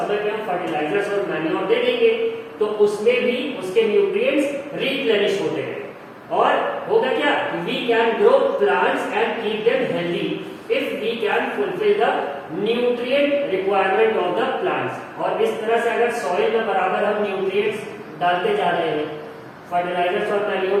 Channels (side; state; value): both; identical; correlation 1.00